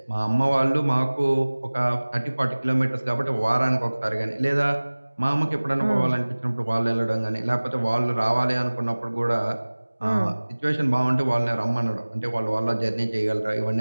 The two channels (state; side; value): inverted; both; correlation -1.00